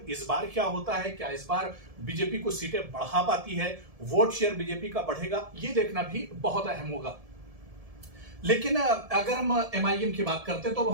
इस बार क्या होता है, क्या इस बार बीजेपी को सीटें बढ़ा पाती है, वोट शेयर बीजेपी का बढ़ेगा, ये देखना भी बहुत अहम होगा। लेकिन अगर हम एमआईएम की बात करते हैं तो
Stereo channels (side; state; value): left; late; 1.7 ms